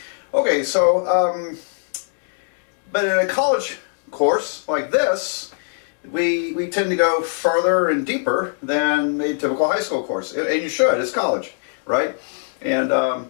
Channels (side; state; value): right; silent; 65 dB below the other